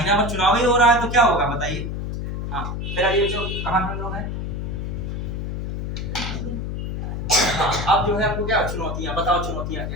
भर चुनाव ही हो रहा है तो क्या होगा बताइए। हाँ फिर आइए जो कहाँ पे लोग हैं, हाँ अब जो है आपको क्या चुनौतियां, बताओ चुनौतियां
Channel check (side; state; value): left; noise; hum, 4 dB below the sound